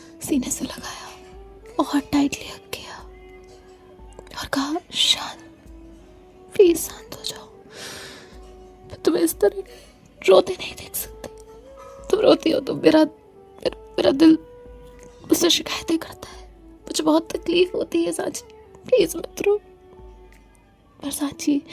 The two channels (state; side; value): identical; both; correlation 1.00